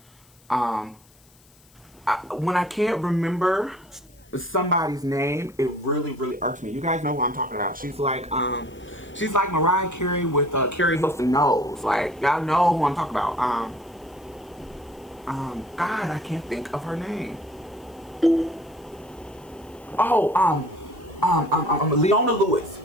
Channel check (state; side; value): noise; left; hiss, 29 dB below the sound